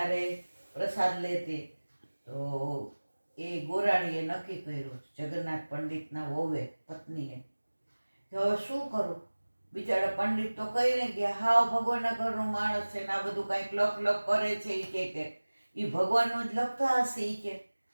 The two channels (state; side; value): inverted; both; correlation -1.00